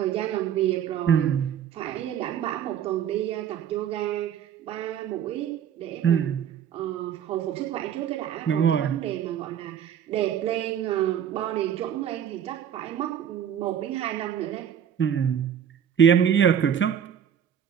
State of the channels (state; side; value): quieter; left; 9.1 dB